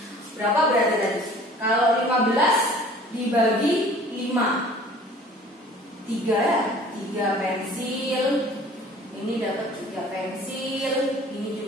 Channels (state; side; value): normal; both; correlation 0.49